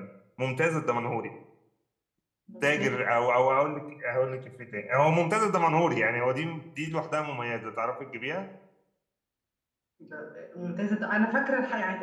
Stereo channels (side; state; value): both; identical; correlation 1.00